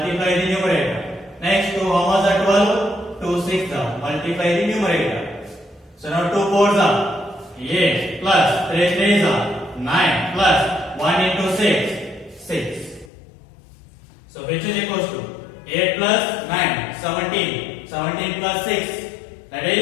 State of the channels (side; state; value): right; drops out; at 13.1 s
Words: the numerator. Next 2 how much are 12? 2 six are. Multiply the numerator. So now 2 fours are 8 plus 3 threes are 9 plus 1 into 6, 6. So which is equals to 8 plus 9, 17. 17 plus 6, that